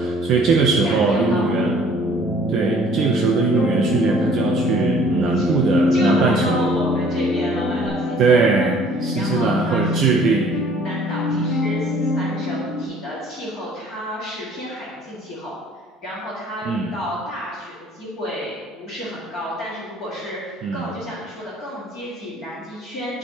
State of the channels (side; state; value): both; normal; correlation 0.55